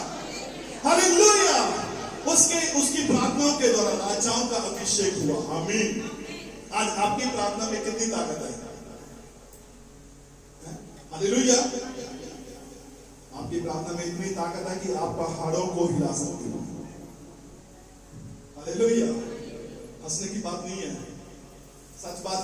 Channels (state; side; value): identical; both; correlation 1.00